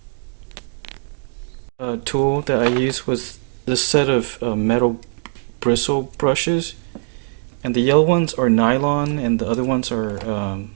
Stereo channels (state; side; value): silent; left; 60 dB below the other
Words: Tool that I used was this set of metal bristle brushes, and the yellow ones are nylon and the other ones are